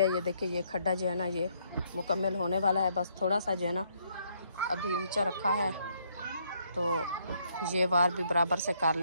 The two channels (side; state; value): both; inverted; correlation -0.70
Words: ये देखिए ये खड्डा जो है ना ये मुकम्मल होने वाला है, बस थोड़ा सा जो है ना अभी ऊंचा रखा है, तो ये वार भी बराबर से कर